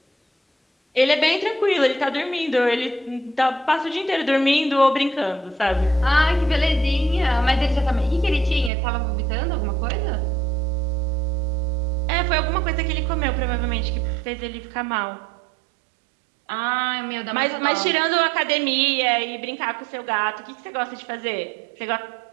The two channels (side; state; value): left; drops out; at 8.7 s